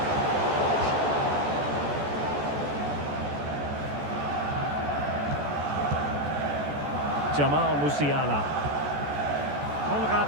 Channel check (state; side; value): late; left; 14 ms